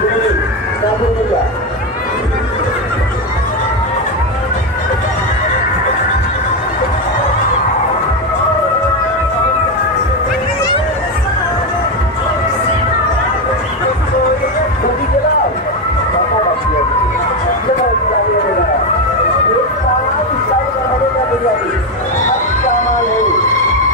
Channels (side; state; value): both; normal; correlation 0.11